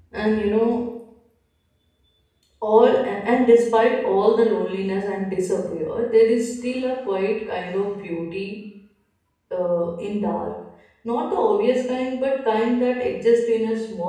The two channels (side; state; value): both; identical; correlation 1.00